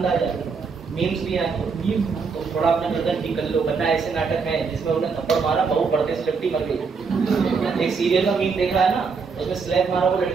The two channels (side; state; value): left; quieter; 5.2 dB